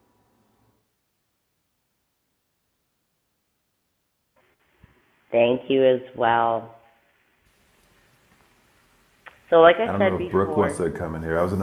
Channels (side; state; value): both; identical; correlation 1.00